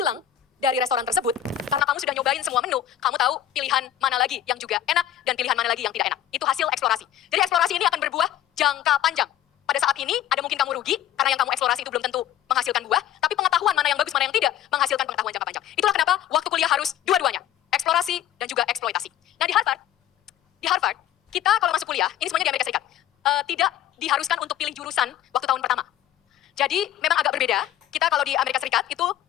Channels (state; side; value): quieter; right; 11.4 dB